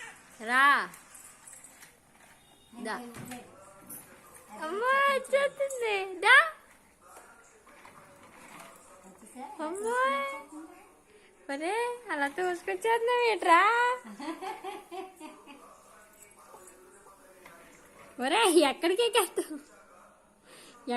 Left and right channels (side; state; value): both; identical; correlation 1.00